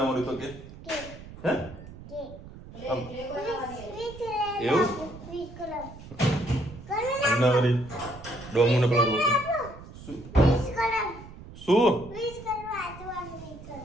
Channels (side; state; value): right; noise; rumble, 16 dB below the sound